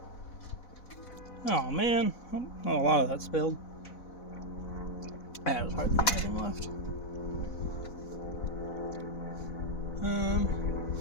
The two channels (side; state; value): right; late; 4.0 ms